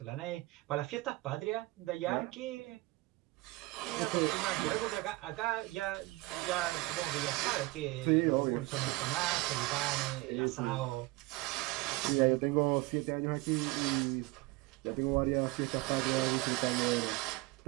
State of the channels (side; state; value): left; quieter; 21.3 dB